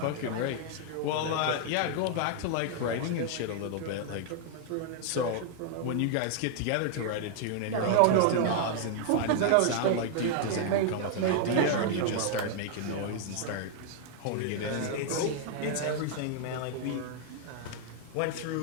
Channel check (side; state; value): both; different; correlation 0.00